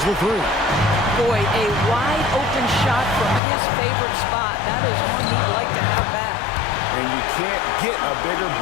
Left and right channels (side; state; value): right; drops out; at 3.4 s